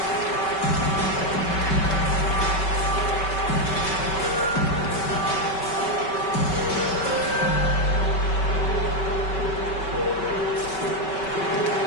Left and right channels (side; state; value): right; late; 5.3 ms